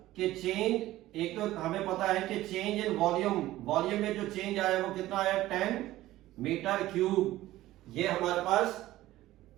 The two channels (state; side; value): quieter; left; 15.7 dB